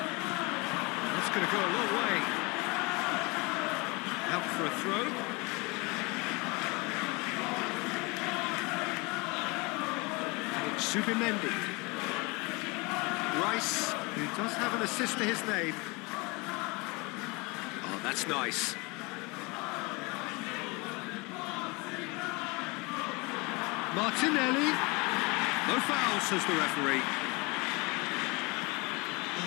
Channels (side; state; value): right; quieter; 27.0 dB